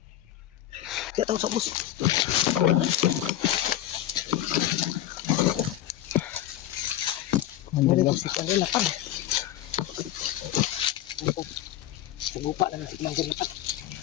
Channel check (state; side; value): quieter; right; 12.7 dB